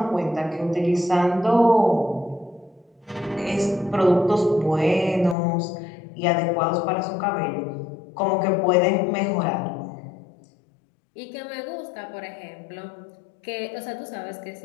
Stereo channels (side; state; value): right; drops out; at 5.4 s